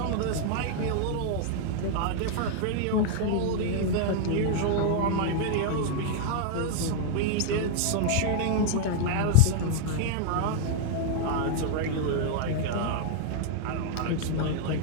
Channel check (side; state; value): both; different; correlation -0.01